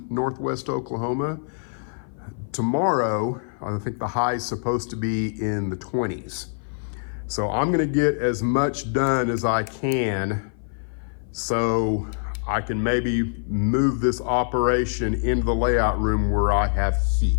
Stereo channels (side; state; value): right; silent; 56 dB below the other